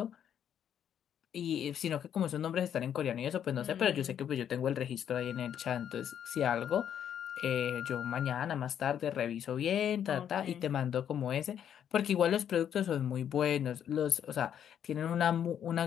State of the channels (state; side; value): quieter; right; 9.3 dB